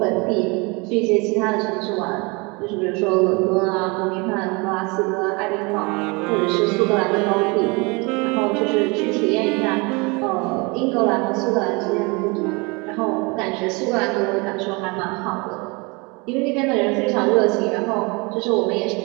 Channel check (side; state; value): left; quieter; 28.2 dB